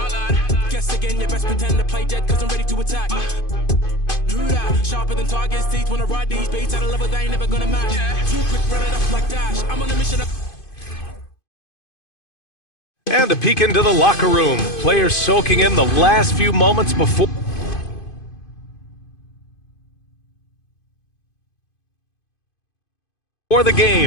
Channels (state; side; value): late; right; 2.5 ms